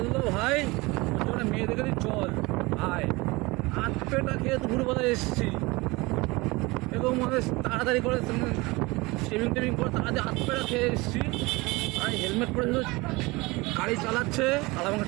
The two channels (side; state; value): left; quieter; 23.4 dB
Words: ভাই ওর জন্য মেয়ে দেখে দিই চল ভাই, হাত পেটা খেয়ে দুপুরবেলা এসেছি এবং মানে তাড়াতাড়ি করে শেভিং টেভিং করে তাড়াতাড়ি হাত পেটা খেয়ে এসেছি। আর হেলমেট পরে শুধু গাড়ি চালাচ্ছে আর আমাকে